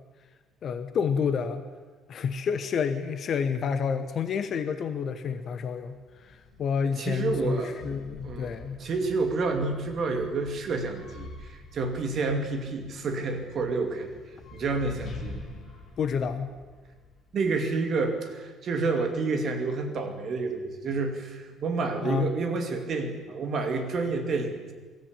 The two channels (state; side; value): normal; both; correlation 0.60